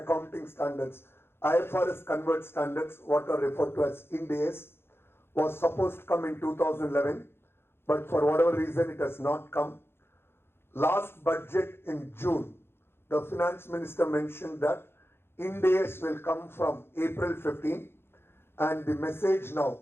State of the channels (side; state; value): right; late; 0.11 ms